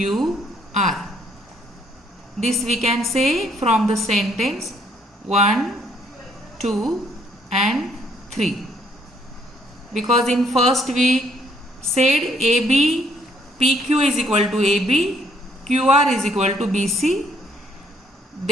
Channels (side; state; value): both; normal; correlation 0.67